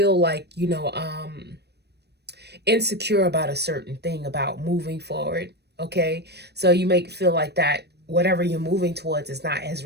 like, insecure about a certain thing, about moving forward. Okay, so you may feel like that whatever you're moving towards is not as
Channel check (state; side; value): late; left; 0.48 ms